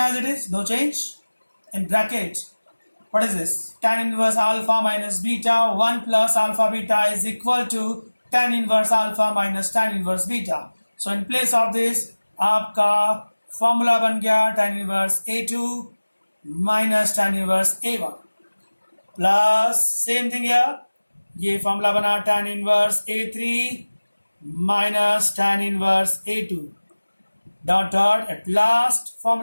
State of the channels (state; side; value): inverted; both; correlation -1.00